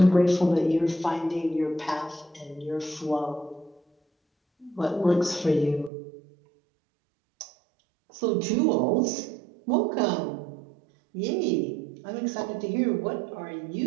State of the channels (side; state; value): left; drops out; at 5.9 s